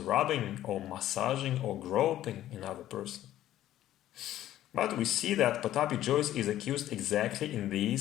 or massaging or groping another person. But we see that Pataphy Jois is accused exactly in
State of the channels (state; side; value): quieter; right; 13.1 dB